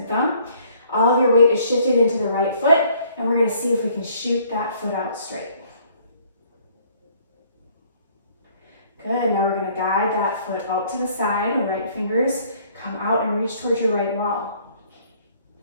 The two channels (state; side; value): inverted; both; correlation -0.60